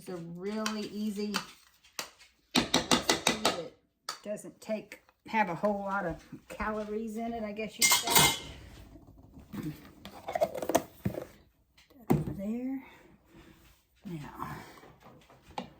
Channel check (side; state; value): both; identical; correlation 1.00